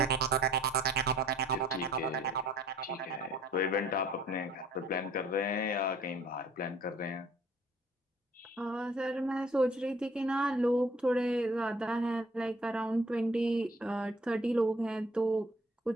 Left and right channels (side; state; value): both; normal; correlation 0.57